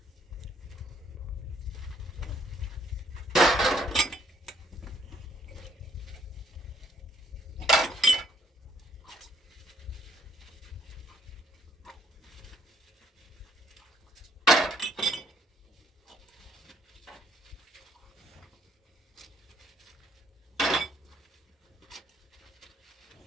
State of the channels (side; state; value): both; normal; correlation 0.66